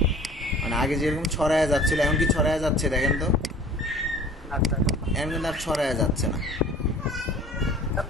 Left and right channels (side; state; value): both; normal; correlation 0.47